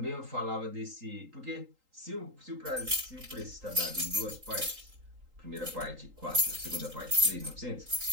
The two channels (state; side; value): late; left; 3.8 ms